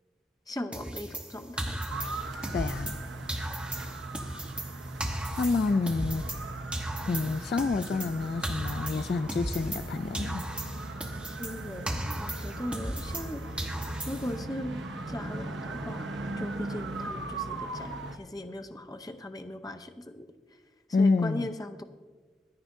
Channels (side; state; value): both; normal; correlation 0.80